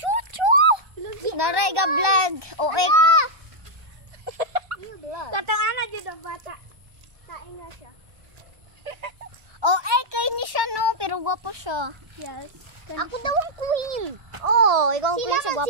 Naray ga vlog. Oek. Katong ana jud ang bata. Kain na siya. Oh, kay ni siya no, pero gwapo siya. Yes. Ako daw ang queen. Oh, ikaw ang queen sa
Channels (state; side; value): late; left; 1.2 ms